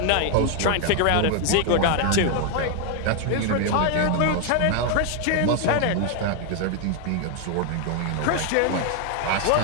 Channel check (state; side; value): different; both; correlation 0.01